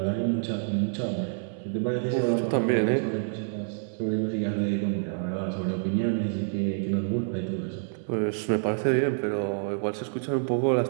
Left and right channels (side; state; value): left; silent; 60 dB below the other